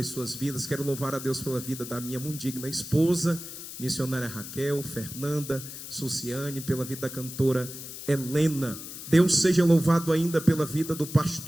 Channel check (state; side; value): noise; left; hiss, 11 dB below the sound